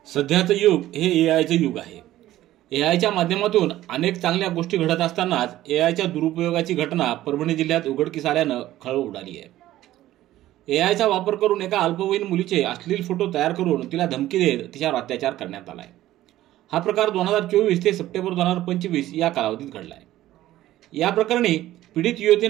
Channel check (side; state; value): left; quieter; 14.6 dB